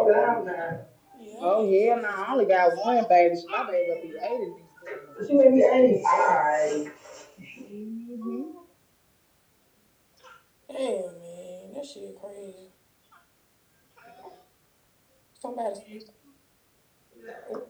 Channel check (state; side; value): identical; both; correlation 1.00